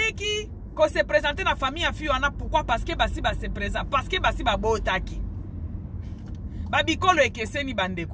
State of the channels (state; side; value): identical; both; correlation 1.00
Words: ko se présenter na famille a fiona pourquoi parce que basi ba se présent parce que basi ba botaki babikolo ekeseni